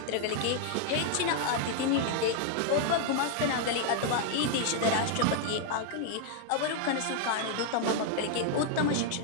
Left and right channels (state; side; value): different; both; correlation 0.00